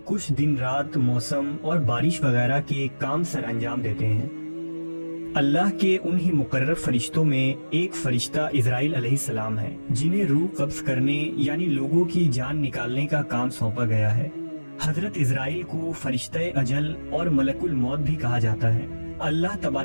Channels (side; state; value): both; inverted; correlation -1.00